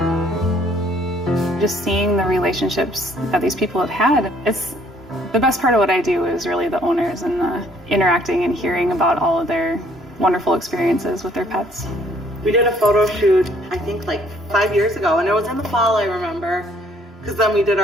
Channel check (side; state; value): both; normal; correlation 0.62